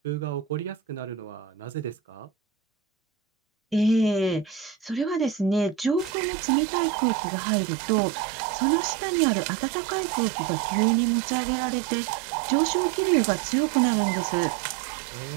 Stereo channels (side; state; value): left; drops out; at 6.2 s